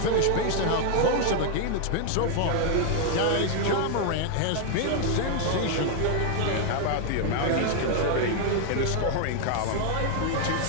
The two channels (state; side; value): different; both; correlation 0.00